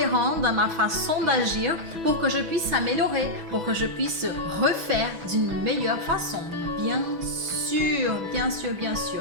dans ma façon d'agir pour que je puisse s'améliorer, pour que je puisse refaire d'une meilleure façon. Bien sûr, bien sûr, bien sûr.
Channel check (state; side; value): late; left; 6.0 ms